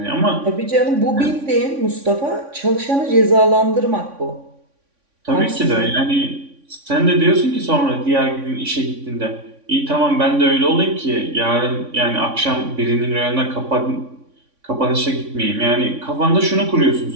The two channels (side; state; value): left; late; 3.6 ms